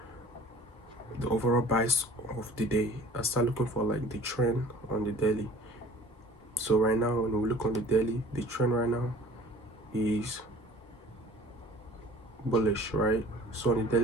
the overall bias of the day. I start looking for like the trend on the daily. So right now, when we look on the daily, the trend right now is bullish, right? So on the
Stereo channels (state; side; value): normal; both; correlation 0.48